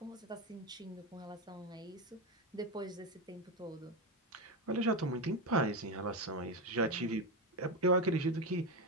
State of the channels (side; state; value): both; normal; correlation 0.14